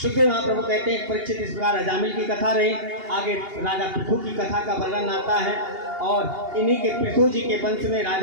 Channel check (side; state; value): left; late; 2.8 ms